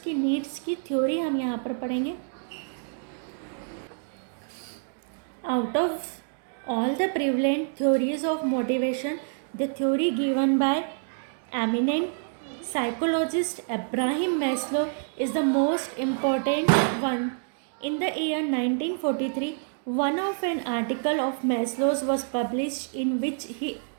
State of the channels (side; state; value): left; silent; 60 dB below the other